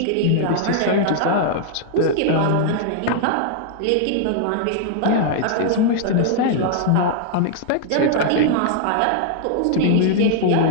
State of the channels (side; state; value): both; different; correlation -0.01